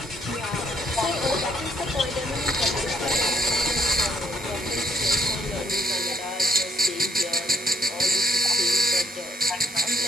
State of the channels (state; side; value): normal; both; correlation 0.71